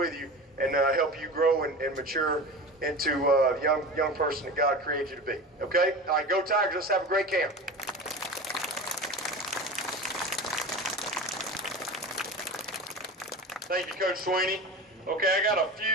you and help you grow and mature into the young person that God created you to be. Okay? All right, go Tigers. Let's have a great camp. Thank you, Coach Swinney. Okay, I got a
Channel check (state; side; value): normal; both; correlation 0.31